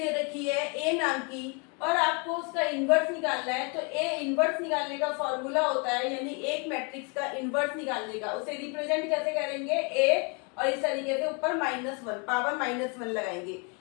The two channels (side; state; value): right; quieter; 34.0 dB